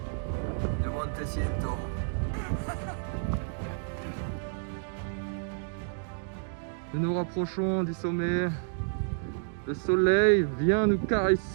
de Montecento. Nous nous rapprochons du sommet. Le soleil vient nous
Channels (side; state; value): left; silent; digital silence